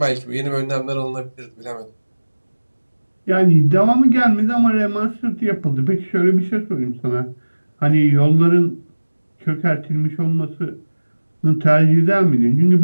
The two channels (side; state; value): both; inverted; correlation -1.00